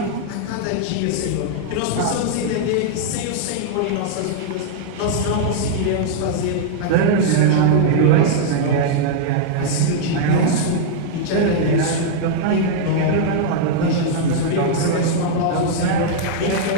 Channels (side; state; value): both; different; correlation -0.01